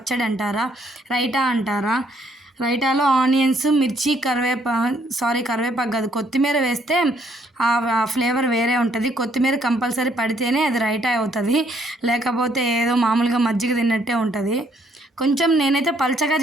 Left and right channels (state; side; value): normal; both; correlation 0.68